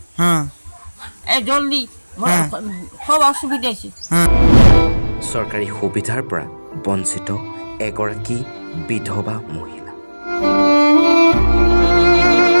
জলদি সব অসুবিধা আছে। চৰকাৰী সুবিধাৰ পৰা বঞ্চিত এগৰাকী বিধৱা মহিলা।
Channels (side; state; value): both; inverted; correlation -1.00